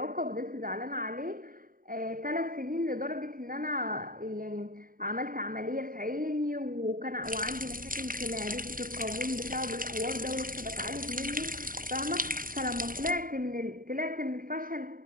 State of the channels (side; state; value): left; late; 0.41 ms